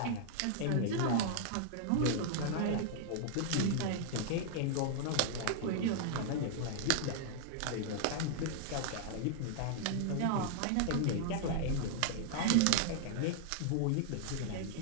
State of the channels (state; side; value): different; both; correlation -0.01